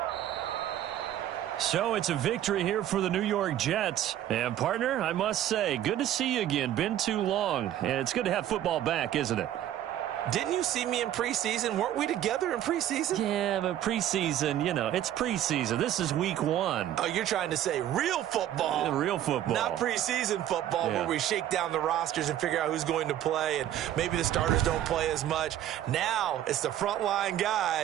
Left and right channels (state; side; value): quieter; left; 11.9 dB